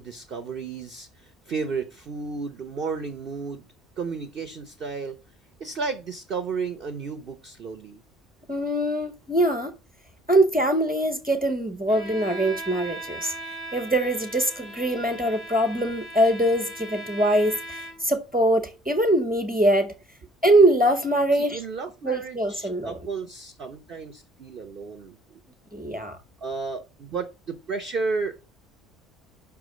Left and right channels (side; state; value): both; normal; correlation 0.57